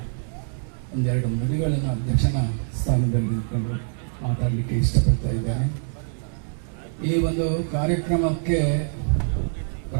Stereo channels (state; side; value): silent; left; 62 dB below the other